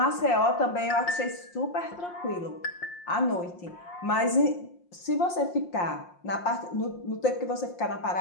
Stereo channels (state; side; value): late; right; 5.7 ms